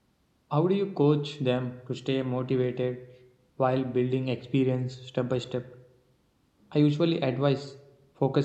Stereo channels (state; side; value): identical; both; correlation 1.00